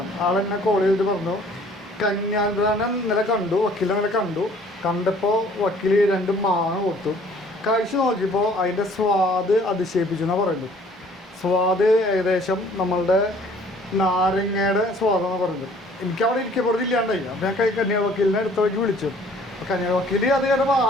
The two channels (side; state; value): both; normal; correlation 0.55